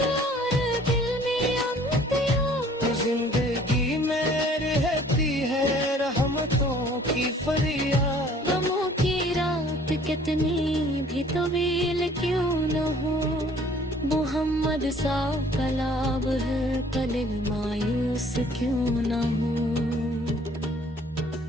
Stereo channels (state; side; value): normal; both; correlation 0.55